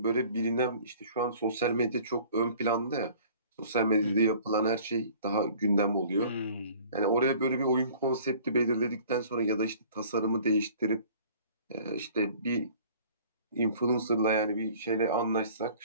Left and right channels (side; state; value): both; inverted; correlation -0.50